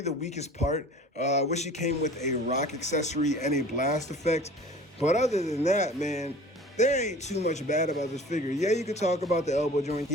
the weakest part. I wish he came with a rock accessory and a blast effect. But other than that, man, there ain't too much bad about this figure. Yeah, you could talk about the elbow joint.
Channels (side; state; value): both; normal; correlation 0.42